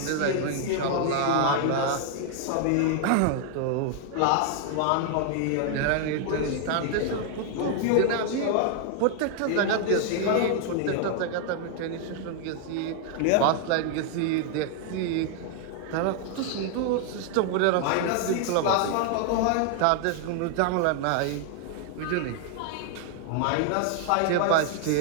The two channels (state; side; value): different; both; correlation 0.00